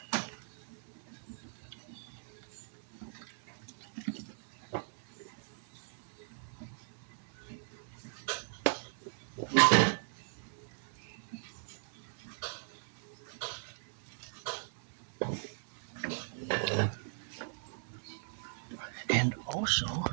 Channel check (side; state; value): left; silent; digital silence